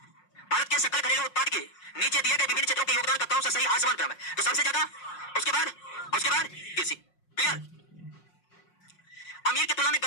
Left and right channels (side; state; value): right; late; 5.5 ms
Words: भारत के सकल घरेलू उत्पाद के नीचे दिए गए विभिन्न क्षेत्रों के योगदान का कौन सा सही आसमान क्रम है? तो सबसे ज्यादा, उसके बाद कृषि। क्लियर? अमीर की तुलना में